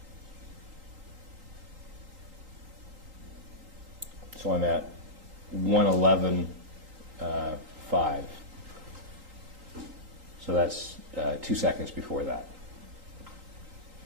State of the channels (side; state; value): left; late; 3.8 ms